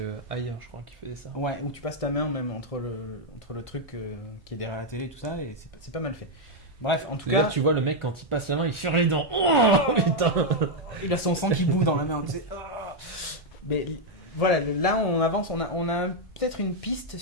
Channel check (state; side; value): normal; both; correlation 0.00